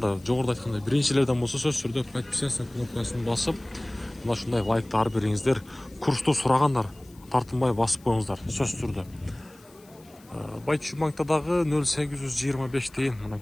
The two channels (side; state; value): left; noise; hiss, 27 dB below the sound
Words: жоғырда айтқандай биринчилерден болса сөз түрде подписаться кнопкасын басып, мына шундай лайкты ар бериңиздер. Курсты сұрағандар тартынбай басып қойыңыздар сөз түрде. Байтүші банктадағы 0,825 дейін,